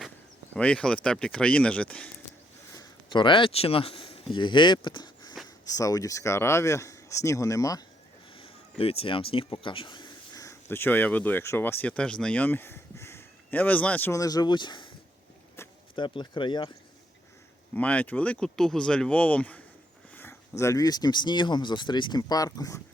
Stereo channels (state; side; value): normal; both; correlation 0.74